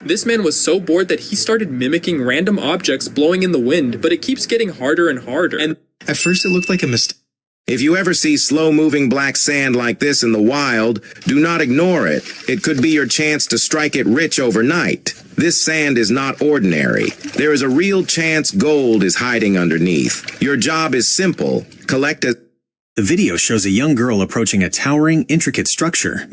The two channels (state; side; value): identical; both; correlation 1.00